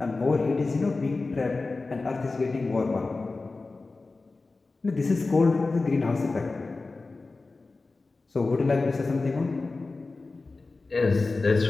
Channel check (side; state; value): right; quieter; 3.7 dB